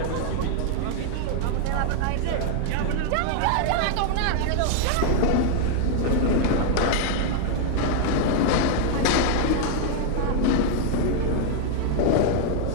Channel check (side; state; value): both; different; correlation 0.00